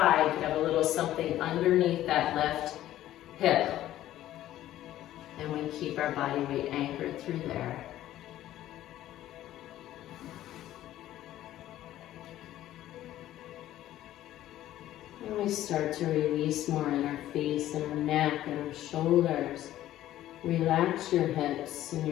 you can have a little something underneath that left hip. And we keep our body weight anchored through there. And we start to release more in our face and our neck and our shoulders. Relax your hips and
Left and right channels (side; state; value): right; quieter; 13.5 dB